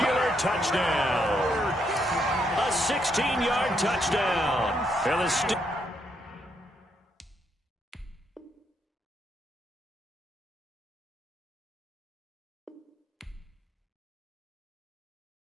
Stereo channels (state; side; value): normal; both; correlation 0.76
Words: touchdown. A 16-yard touchdown. And the